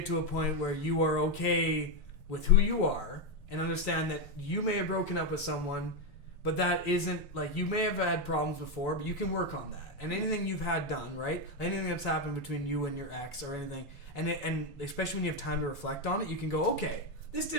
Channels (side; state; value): both; normal; correlation 0.06